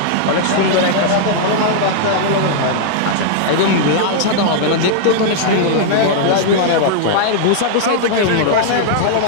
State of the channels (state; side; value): different; both; correlation -0.01